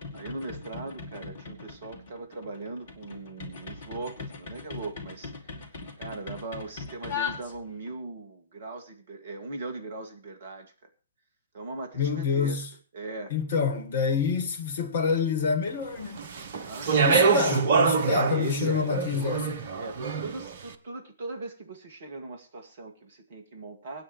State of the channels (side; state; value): both; inverted; correlation -0.36